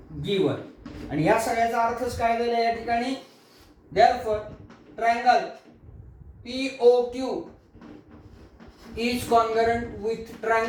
given. आणि या सगळ्याचा अर्थच काय झाला या ठिकाणी. Therefore triangle POQ is congruent with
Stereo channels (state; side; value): identical; both; correlation 1.00